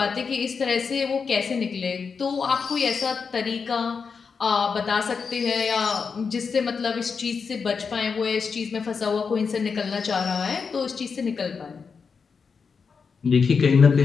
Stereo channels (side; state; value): right; quieter; 5.5 dB